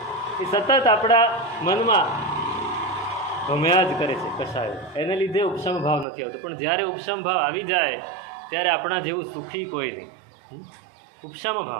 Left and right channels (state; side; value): drops out; left; at 6.1 s